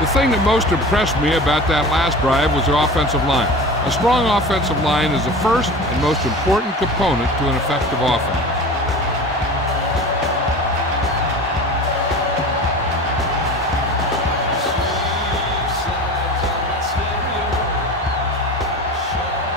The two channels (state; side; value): normal; both; correlation 0.35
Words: The thing that most impressed me about that last drive was the offensive line. A strong offensive line is the first and most important component to an effective offense.